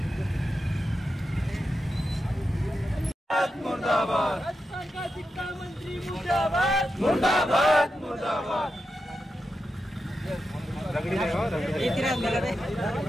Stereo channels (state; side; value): normal; both; correlation 0.89